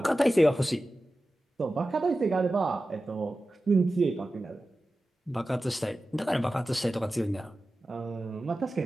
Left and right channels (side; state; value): both; normal; correlation 0.94